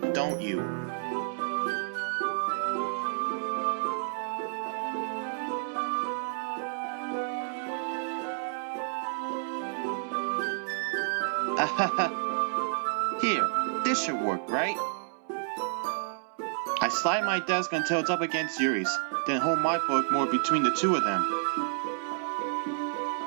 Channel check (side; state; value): left; silent; 58 dB below the other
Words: don't you? Ahaha. Here, this should work, right? I slide my desk until it's up against Yuri's, then hold my book more between the two of them.